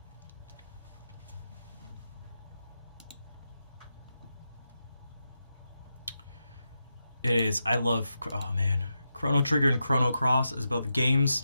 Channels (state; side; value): inverted; both; correlation -0.88